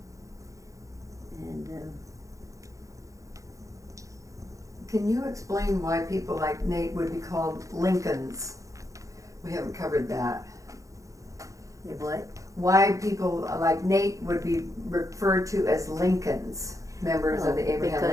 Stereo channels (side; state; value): left; late; 0.16 ms